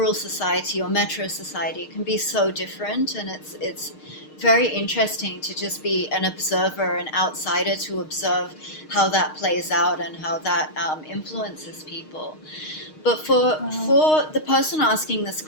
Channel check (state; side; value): late; right; 6.5 ms